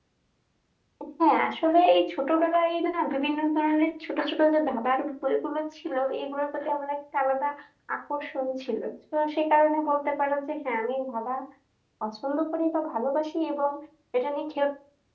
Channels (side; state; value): both; identical; correlation 1.00